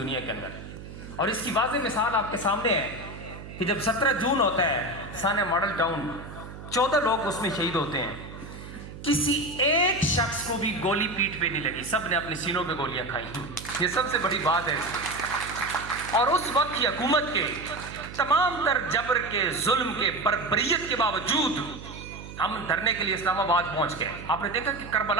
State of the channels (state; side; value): noise; right; hum, 13 dB below the sound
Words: کے اندر۔ اور اس کی واضح مثال آپ کے سامنے ہے کہ جب 17 جون ہوتا ہے سانیہ ماڈل ٹاؤن، 14 لوگ اس میں شہید ہوتے ہیں، کسی ایک شخص کو بھی گولی پیٹھ پہ نہیں لگی، سب نے اپنے سینوں پہ گولیاں کھائی۔ یہ سب سے بڑی بات ہے۔ اور اس وقت کی حکومت کے تمام تر جبر کے، ظلم کے، بربریت کے باوجود ہم دھرنے کے لیے اسلام آباد پہنچ گئے۔ آپ نے دیکھا کہ